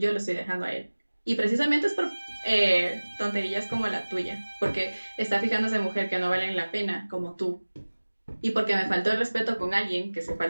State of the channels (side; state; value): both; inverted; correlation -1.00